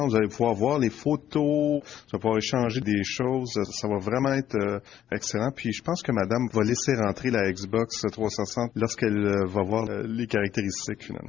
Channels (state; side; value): quieter; right; 10.9 dB